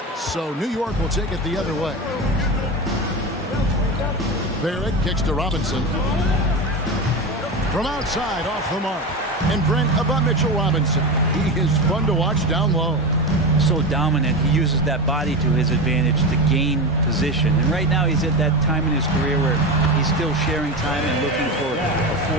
So New York will take it the other way. Barrett kicks to Robinson. From outside, off the mark. And Brent about Mitchell Robinson. He is fun to watch down low. So dominant. He uses that body to his advantage to gain position. And right now he's at that time in his career where he's still sharing time and looking for a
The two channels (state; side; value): normal; both; correlation 0.21